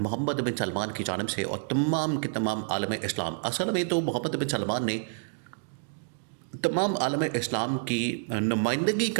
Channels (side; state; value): left; silent; digital silence